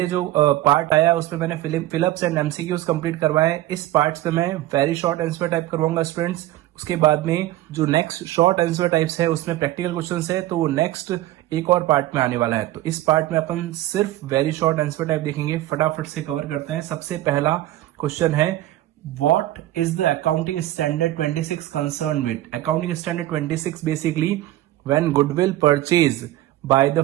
जो पार्ट आया उसमें मैंने फिलअप्स एंड एमसीक्यूज कंप्लीट करवाए। इस पार्ट पे मैं वेरी शॉर्ट आंसर टाइप करवाऊंगा स्टूडेंट्स। उसके बाद में जो नेक्स्ट शॉर्ट आंसर टाइप्स है उसमें प्रैक्टिकल क्वेश्चंस है, तो वो नेक्स्ट एक और पार्ट में आने वाला है। तो इस पार्ट में अपन सिर्फ वेरी शॉर्ट आंसर टाइप देखेंगे, फटाफट से कवर करते हैं। सबसे पहला क्वेश्चन है, What is the accounting standard 26 concerned with? Accounting standard 26 basically when goodwill purchase by the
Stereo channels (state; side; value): quieter; left; 15.2 dB